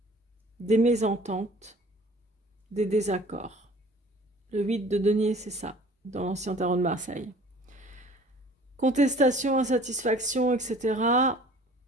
mésententes, des désaccords. Le 8 de denier, c'est ça, dans l'ancien tarot de Marseille. Contestation, insatisfaction, etc.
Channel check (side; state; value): both; normal; correlation 0.50